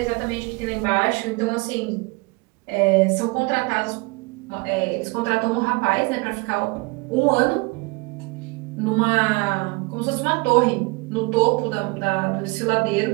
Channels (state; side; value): quieter; left; 26.5 dB